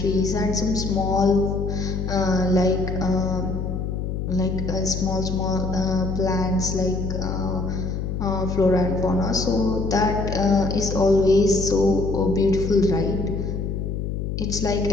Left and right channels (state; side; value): noise; left; hum, 3 dB below the sound